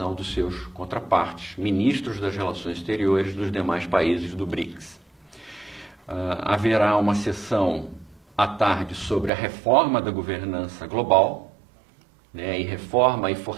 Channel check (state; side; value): drops out; left; at 9.3 s